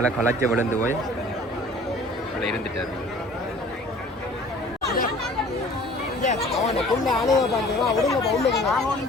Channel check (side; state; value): both; normal; correlation 0.49